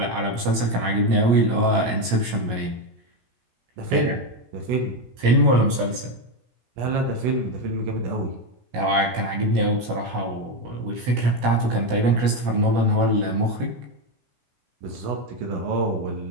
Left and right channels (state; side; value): late; left; 16 ms